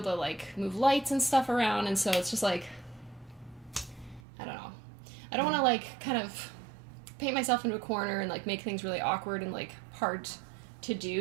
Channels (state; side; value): drops out; left; at 4.2 s